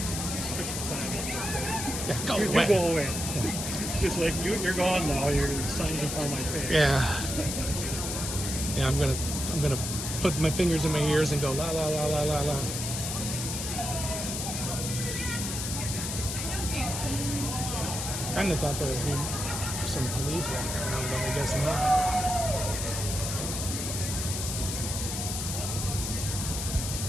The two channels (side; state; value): left; noise; hiss, 4 dB below the sound